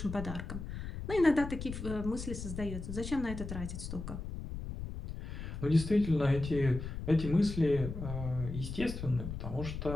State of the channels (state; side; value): noise; left; rumble, 7 dB below the sound